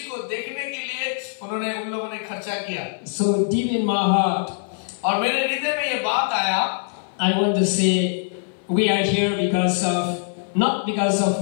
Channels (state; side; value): silent; right; 59 dB below the other